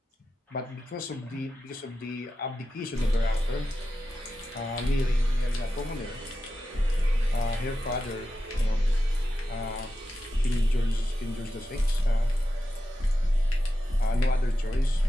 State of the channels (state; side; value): normal; both; correlation 0.91